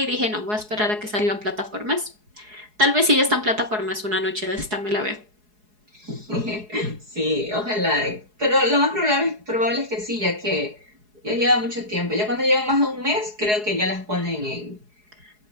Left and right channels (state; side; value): late; left; 4.7 ms